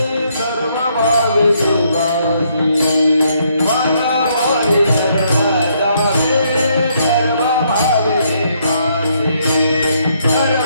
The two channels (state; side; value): inverted; both; correlation -0.72